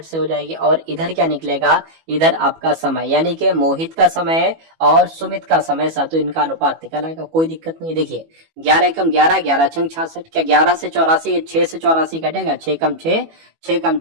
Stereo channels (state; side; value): late; left; 18 ms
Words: से हो जाएगी। और इधर क्या निकलेगा, इधर आपका समय, यानी कि मोहित का समय और सुमित का समय साथियों, इनका अनुपात निकल आएगा, कोई दिक्कत नहीं। देखिए 11 एकम 11, 11 छंग 66, क्या 11 से 84, 6 से 84 कटेगा, 6 कम 6, 6 कम